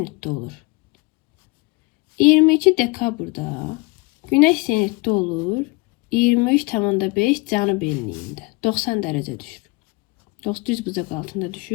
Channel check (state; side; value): quieter; right; 25.1 dB